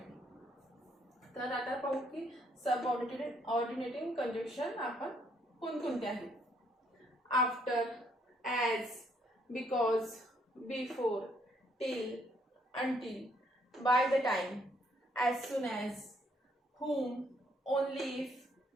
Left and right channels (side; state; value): both; normal; correlation 0.69